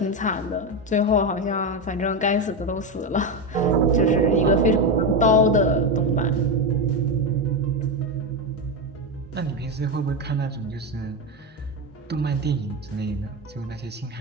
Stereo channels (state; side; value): normal; both; correlation 0.12